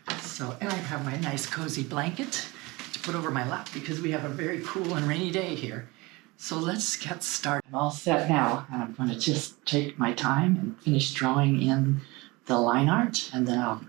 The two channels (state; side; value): quieter; left; 23.5 dB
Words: So, and I have my nice cozy blanket to put over my lap because we have a very cool and rainy day here. So let's get started. I'm all set now, and I'm going to just take my time and finish drawing in the line art, and then I'll